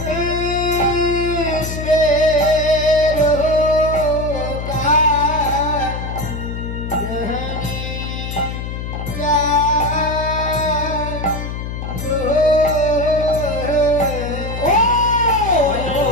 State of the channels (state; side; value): noise; left; hum, 6 dB below the sound